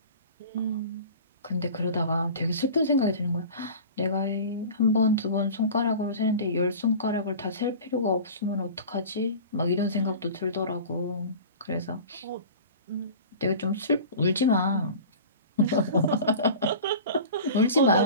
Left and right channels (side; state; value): both; inverted; correlation -0.38